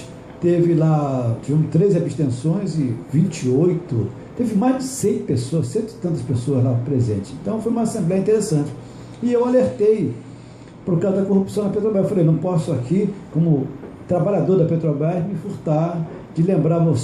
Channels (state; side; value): identical; both; correlation 1.00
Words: tiveram 13 abstenções e 28, teve mais de 100 pessoas, 100 e tantas pessoas lá presentes. Então foi uma assembleia interessante. E eu alertei por causa da corrupção na Petrobras. Eu falei, não posso aqui, como trabalhador da Petrobras, me furtar de lembrar a